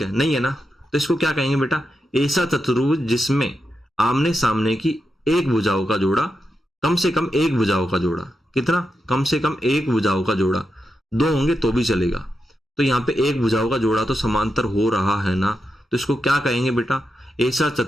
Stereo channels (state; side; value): normal; both; correlation 0.87